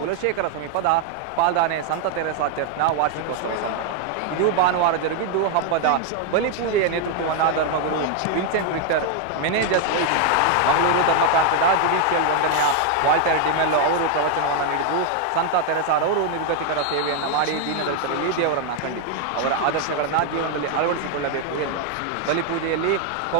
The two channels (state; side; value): different; both; correlation 0.00